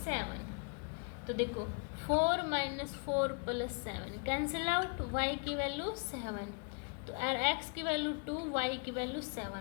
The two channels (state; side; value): quieter; right; 34.9 dB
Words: 7। तो देखो 4 minus 4 plus 7 cancel out, y की वैल्यू 7, तो x की वैल्यू 2, y की वैल्यू